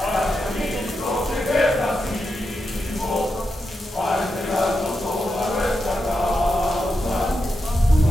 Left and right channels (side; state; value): both; normal; correlation 0.86